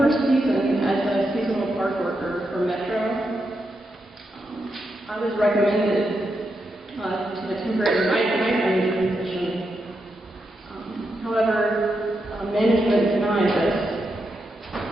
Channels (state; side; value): normal; both; correlation 0.84